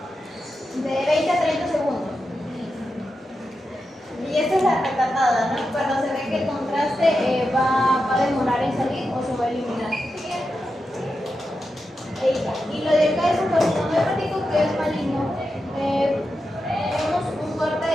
de 20 a 30 segundos. Y esta es la retratada, ¿no? Cuando se ve que el contraste va a demorar en salir o se va a eliminar. Y lo de acá es un carcinoma hepático que es maligno. Tenemos un corte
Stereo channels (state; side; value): normal; both; correlation 0.89